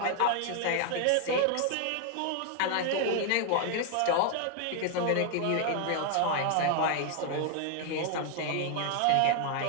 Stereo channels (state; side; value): different; both; correlation 0.01